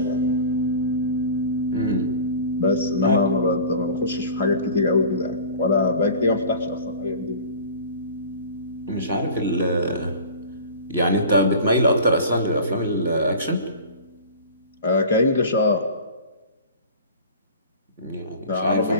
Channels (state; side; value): inverted; both; correlation -0.39